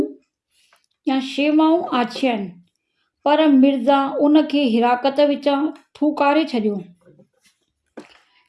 या शेवाऊं आछियाईं, पर मिर्ज़ा उन खे हिराकत विचां थूकारे छॾियो।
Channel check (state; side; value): identical; both; correlation 1.00